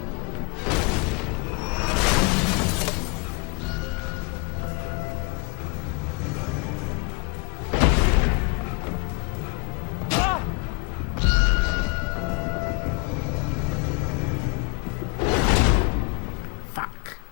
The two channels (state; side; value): quieter; right; 33.0 dB